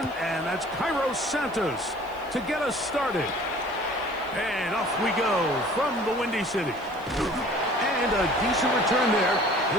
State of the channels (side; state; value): left; noise; hiss, 27 dB below the sound